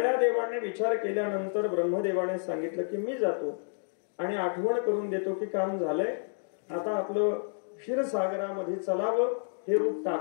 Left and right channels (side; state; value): right; silent; digital silence